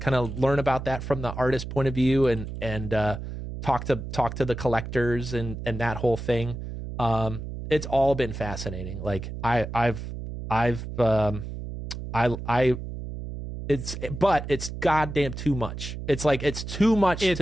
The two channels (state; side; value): noise; right; hum, 8 dB below the sound